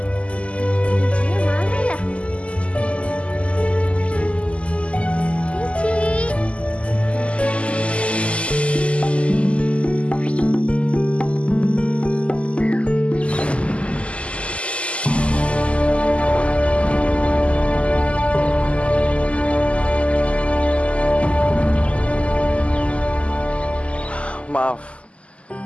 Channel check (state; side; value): late; right; 0.059 ms